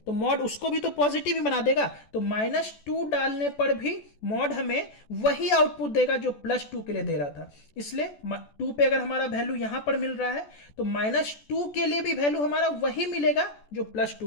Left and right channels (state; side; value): late; right; 14 ms